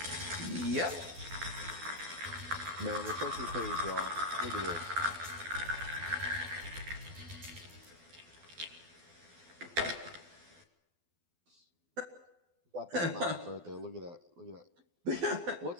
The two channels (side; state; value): left; late; 12 ms